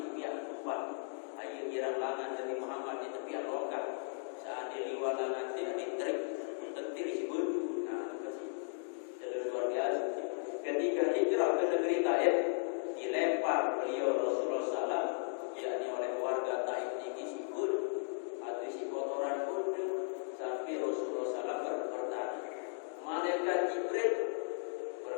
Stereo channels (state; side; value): silent; right; digital silence